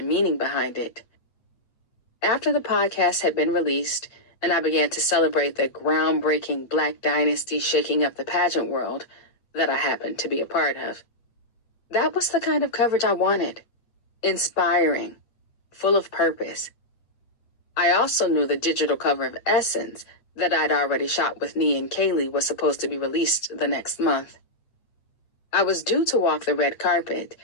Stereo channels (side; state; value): right; late; 8.8 ms